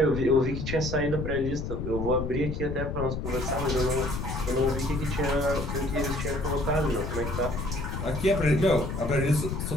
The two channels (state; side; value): noise; left; rumble, 4 dB below the sound